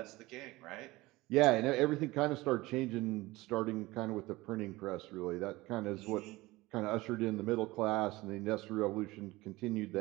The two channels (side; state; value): left; quieter; 20.0 dB